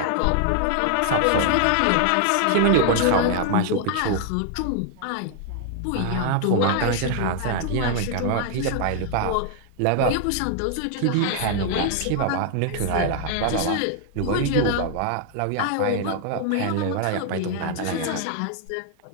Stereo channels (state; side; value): different; both; correlation 0.00